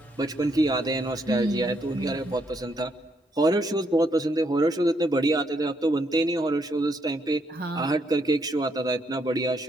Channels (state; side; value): normal; both; correlation 0.75